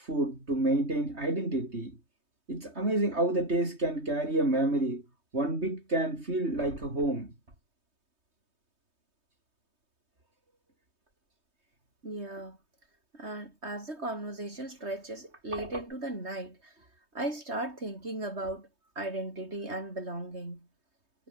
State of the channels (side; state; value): left; late; 3.2 ms